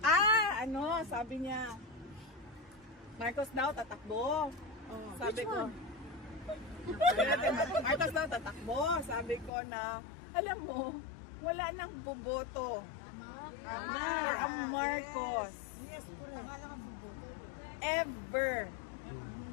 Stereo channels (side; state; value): right; drops out; at 9.5 s